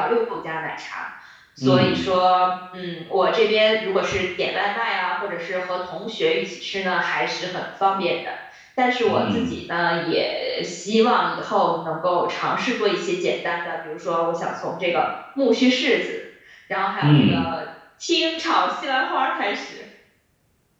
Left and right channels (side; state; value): both; identical; correlation 1.00